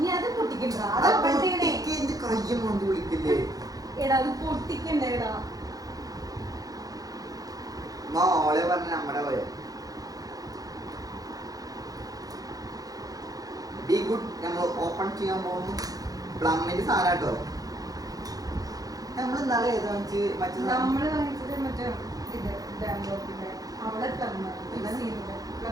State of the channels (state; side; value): late; left; 0.18 ms